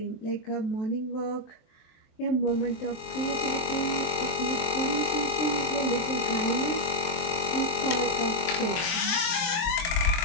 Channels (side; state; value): right; late; 24 ms